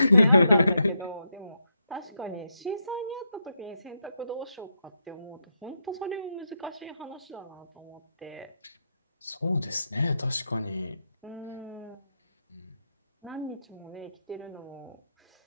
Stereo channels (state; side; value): inverted; both; correlation -0.82